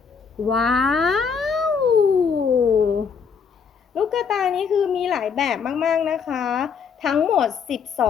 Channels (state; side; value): quieter; right; 6.3 dB